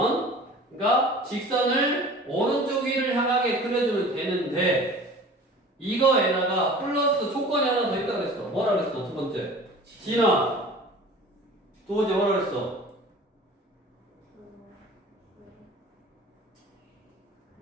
그러니까 직선을 오른쪽 위를 향하게 그려주면 되는데 이거에다가 플러스 조건이 하나 더 있다고 그랬어. 뭐라 그랬어? 두 번째. 진아. 두 번째 뭐라 그랬어?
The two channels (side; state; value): both; normal; correlation 0.42